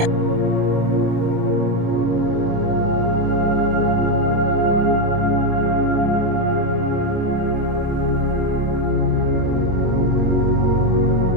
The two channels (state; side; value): late; left; 27 ms